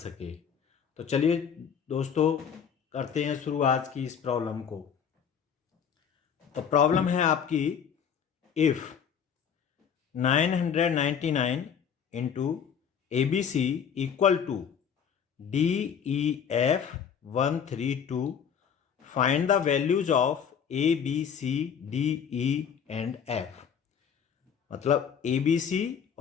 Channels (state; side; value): quieter; right; 7.6 dB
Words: तो चलिए दोस्तों, करते हैं शुरू आज की इस प्रॉब्लम को। तो प्रॉब्लम है आपकी, if 999 into ABC equal to DEF 132, find the values of ABC DE and F। मतलब ABC